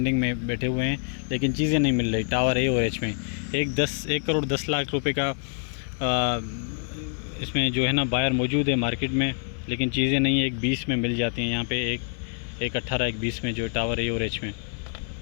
में बैठे हुए हैं, लेकिन चीज़ें नहीं मिल रही। टावर ए और एच में 1 करोड़ 10 लाख रुपए का इसमें जो है ना बायर मौजूद है मार्केट में, लेकिन चीज़ें नहीं है। 1.20 में मिल जाती हैं यहाँ पे, 1.18 1.20 में जो टावर ए और एच में।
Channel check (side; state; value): right; silent; 60 dB below the other